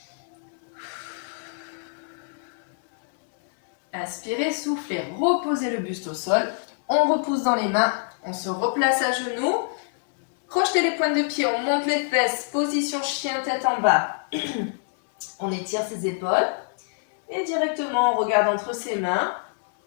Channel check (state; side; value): silent; right; digital silence